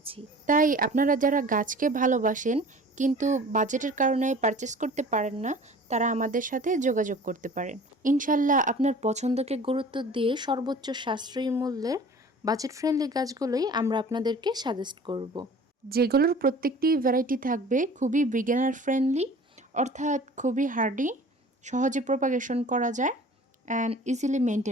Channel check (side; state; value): both; normal; correlation 0.45